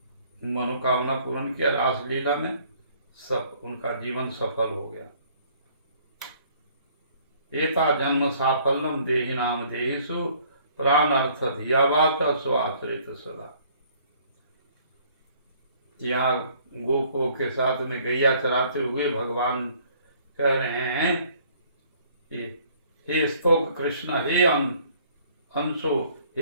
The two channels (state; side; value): inverted; both; correlation -0.59